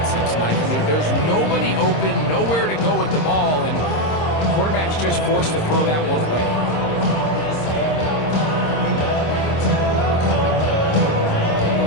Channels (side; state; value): right; late; 26 ms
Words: Mike. I mean, there's nobody open, nowhere to go with the ball, and the quarterback's just forced to throw that one away.